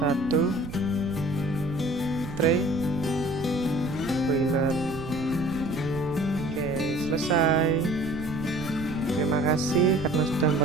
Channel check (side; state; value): right; noise; rumble, 11 dB below the sound